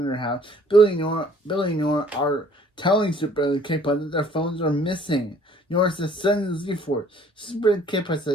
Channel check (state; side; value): normal; both; correlation 0.57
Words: House, Billy Nora are telling Super K-Pod that their phones are missing. Nora says, send the Z-Force. Super K-Pod